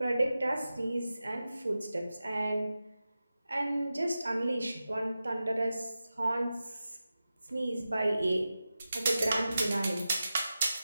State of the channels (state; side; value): inverted; both; correlation -0.93